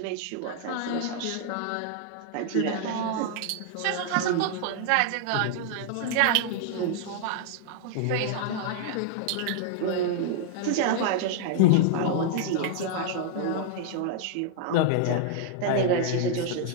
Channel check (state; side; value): different; both; correlation 0.00